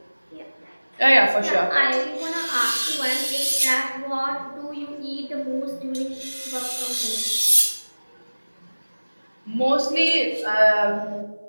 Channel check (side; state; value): both; inverted; correlation -1.00